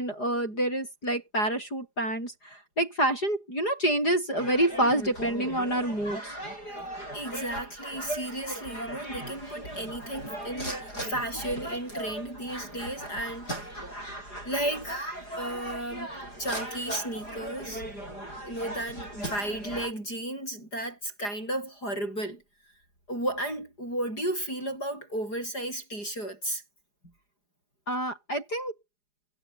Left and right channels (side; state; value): right; late; 4.9 ms